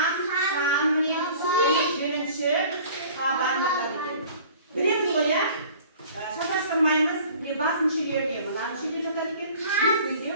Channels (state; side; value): inverted; both; correlation -0.48